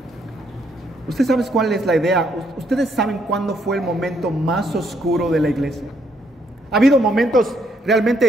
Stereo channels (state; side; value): normal; both; correlation 0.72